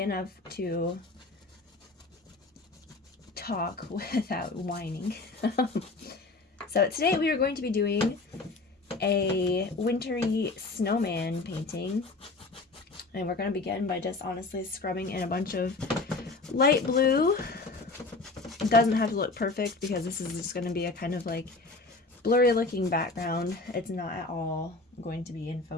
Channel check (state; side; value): quieter; right; 3.5 dB